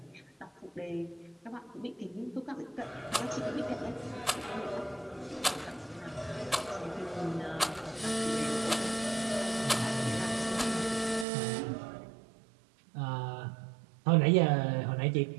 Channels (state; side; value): drops out; left; at 11.2 s